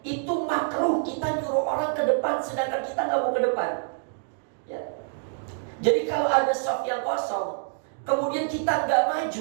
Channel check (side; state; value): left; silent; digital silence